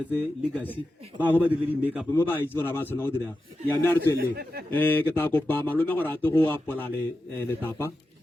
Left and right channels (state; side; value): normal; both; correlation 0.91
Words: legacy ba go ba dire di make up mo ba itse bona ba tsona go dira ya me a re tswelle ke ta kopa malome gore a te go apola le tapa